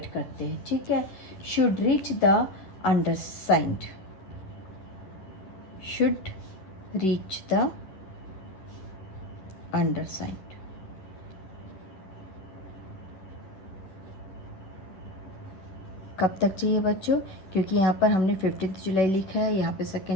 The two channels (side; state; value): right; late; 10 ms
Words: करते हैं, ठीक है। Should reach the undersigned, should reach the undersigned, कब तक चाहिए बच्चों, क्योंकि यहाँ पर हमने 15 जुलाई लिखा है, यहाँ पे